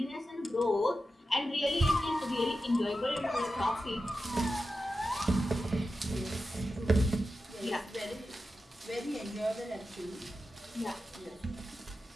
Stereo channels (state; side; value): normal; both; correlation 0.91